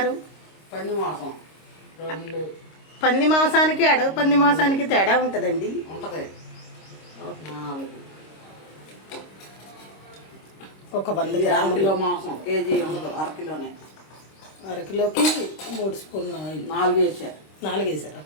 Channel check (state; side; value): late; right; 26 ms